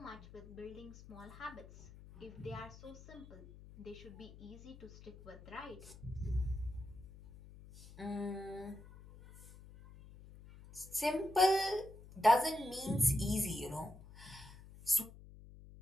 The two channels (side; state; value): left; noise; hum, 18 dB below the sound